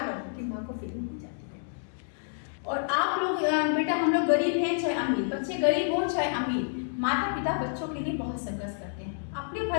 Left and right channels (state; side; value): silent; right; digital silence